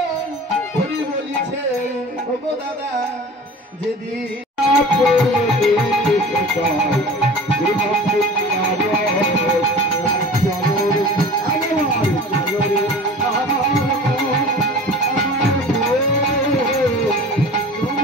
হরি বলিছে ও গো দাদা যেদিন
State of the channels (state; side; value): normal; both; correlation 0.39